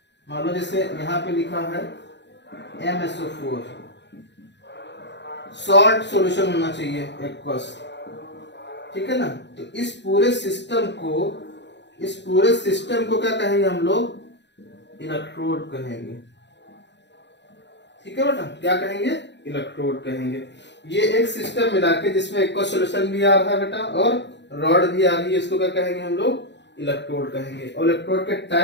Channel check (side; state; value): right; late; 0.51 ms